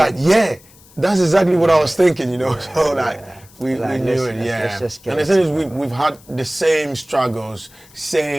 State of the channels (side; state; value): left; noise; hiss, 26 dB below the sound